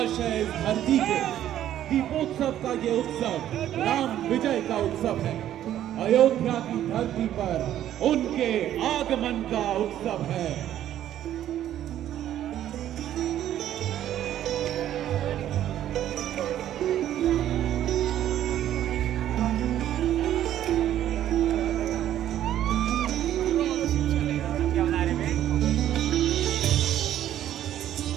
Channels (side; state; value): left; quieter; 11.7 dB